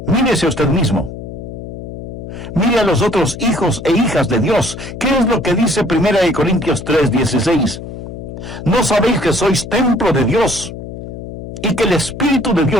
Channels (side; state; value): left; noise; hum, 10 dB below the sound